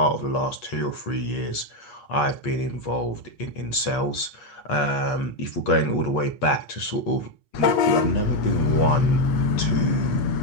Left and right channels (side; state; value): right; late; 8.4 ms